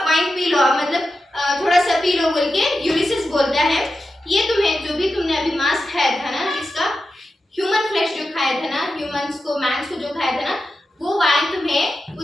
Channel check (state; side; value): normal; both; correlation 0.91